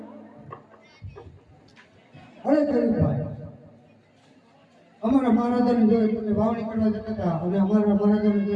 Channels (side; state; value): both; identical; correlation 1.00